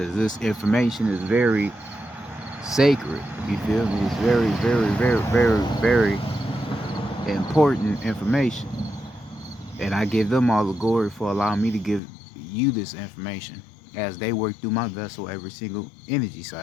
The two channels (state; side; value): drops out; right; at 12.0 s